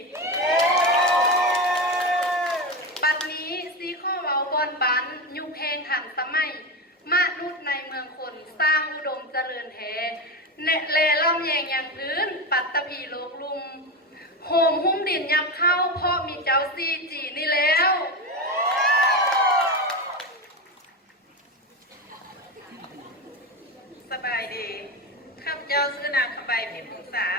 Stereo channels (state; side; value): normal; both; correlation 0.18